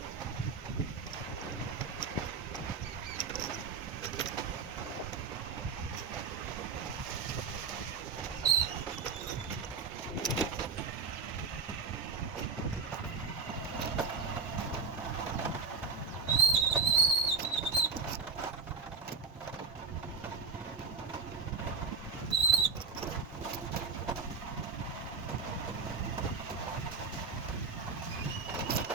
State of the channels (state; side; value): quieter; left; 4.8 dB